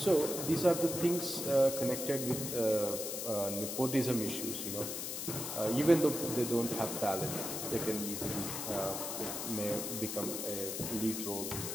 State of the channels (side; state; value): left; noise; hiss, 4 dB below the sound